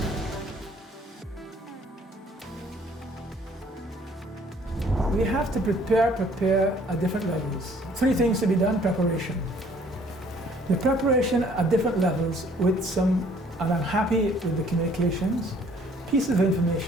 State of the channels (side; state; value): both; normal; correlation 0.59